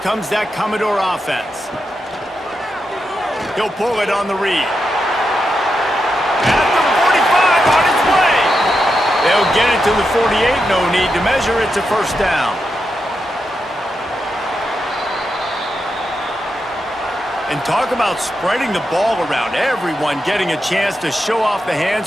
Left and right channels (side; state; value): both; normal; correlation 0.86